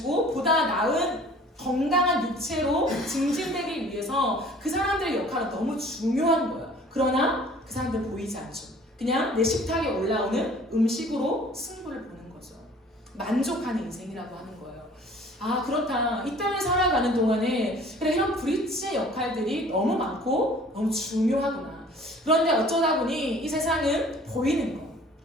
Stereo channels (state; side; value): normal; both; correlation 0.50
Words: 보다 나은 건강한 육체로 증진되기 위해서 그 사람들의 역할은 너무 중요한 거예요. 그러나 그 사람들은 보이지 않죠. 그냥 내 식탁에 올라오는 음식으로 승부를 보는 거죠. 만족하는 인생이라고 하는 거예요. 아 그렇다. 이 땅을 살아가는 동안에 그래 이런 브릿지의 역할들이 너무 많고 너무 중요하구나. 그런데 어쩌다 보니 이 세상은 보이는 거,